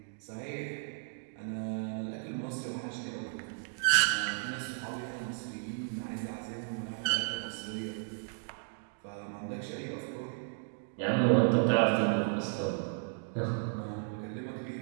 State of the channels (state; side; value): silent; left; digital silence